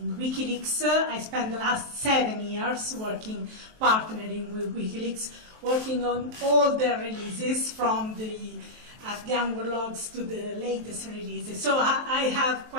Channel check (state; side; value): late; left; 23 ms